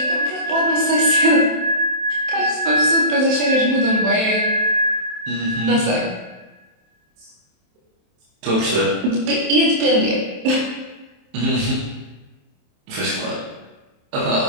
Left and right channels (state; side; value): late; left; 27 ms